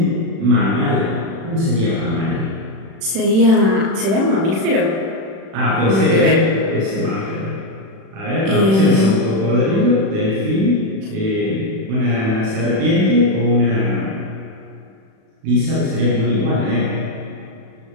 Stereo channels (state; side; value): late; left; 36 ms